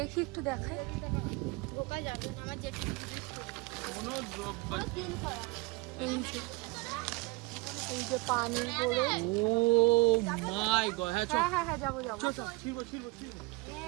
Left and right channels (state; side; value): quieter; left; 25.0 dB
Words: একটু দেখাই। ঢোকা যাবে না, আমার যেটা এই যে পানের বোরোজ। ও মাই গড, হ্যাঁ হ্যাঁ হ্যাঁ হ্যাঁ যাবো যাবো।